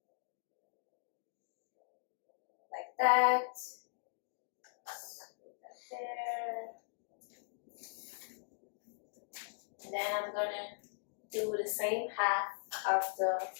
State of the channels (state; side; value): silent; right; digital silence